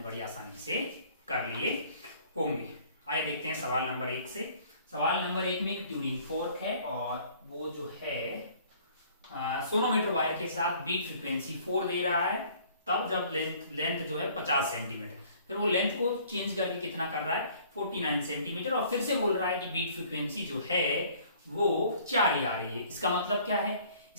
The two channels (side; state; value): both; inverted; correlation -0.56